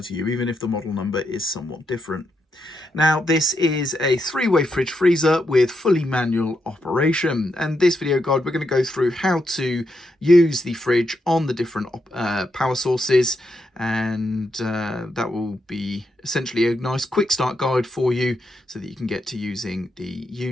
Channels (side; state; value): both; normal; correlation 0.82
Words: to you, even if the model number is somewhat different. Now this is a three-way fridge freezer with fully manual operation, and this video guide we're going to go through how to use the fridge on the different power sources, and that will be essentially a nice quick start guide for you so that you can get to using the